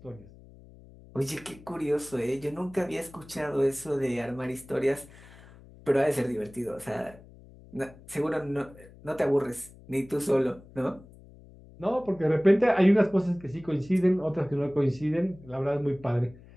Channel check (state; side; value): noise; left; hum, 22 dB below the sound